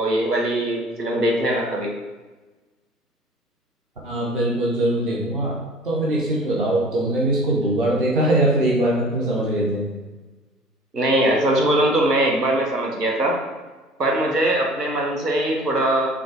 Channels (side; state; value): both; normal; correlation 0.47